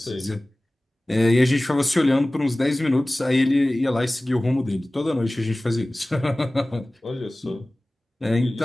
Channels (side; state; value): both; normal; correlation 0.98